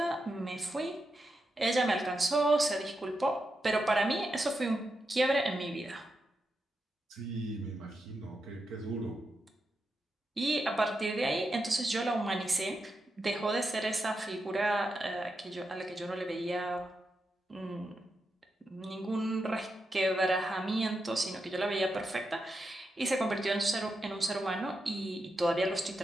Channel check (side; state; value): both; normal; correlation 0.87